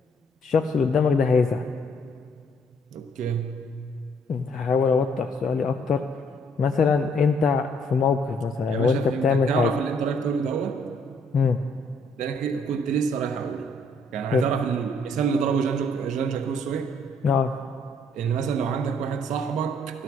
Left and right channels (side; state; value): both; normal; correlation 0.66